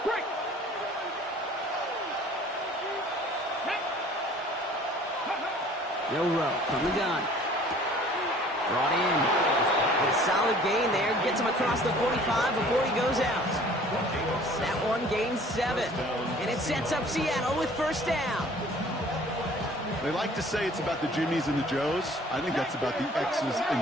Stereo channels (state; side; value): normal; both; correlation 0.51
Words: break. Milrow from the gun. Brought in. A solid gain there. Gets him across the 45 before he goes out. That one gains 7. And it sets up Seattle with 1st down. They like to say it's about the Jimmies and the Joes. I think that's about the X's and